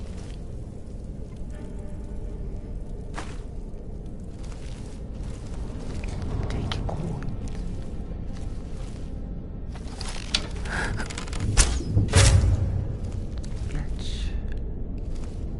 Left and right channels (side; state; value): both; identical; correlation 1.00